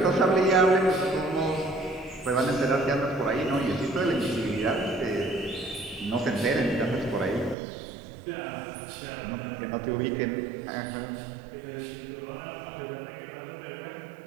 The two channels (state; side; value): drops out; left; at 7.6 s